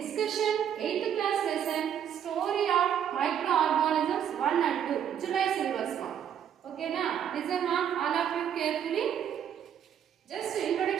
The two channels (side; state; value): left; quieter; 9.2 dB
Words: 8th class lesson story of microorganisms 1 and 2 July syllabus, ma. Okay, na listen, ma, all of you carefully. Just